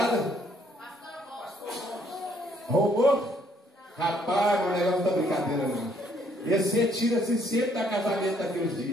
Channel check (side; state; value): both; normal; correlation 0.66